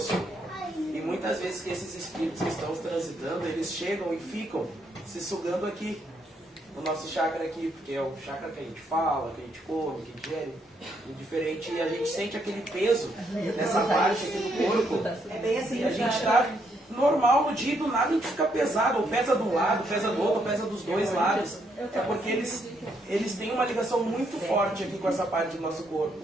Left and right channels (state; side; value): normal; both; correlation 0.74